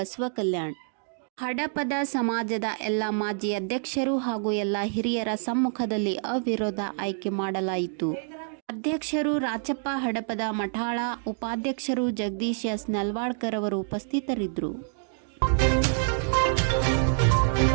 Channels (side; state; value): left; silent; digital silence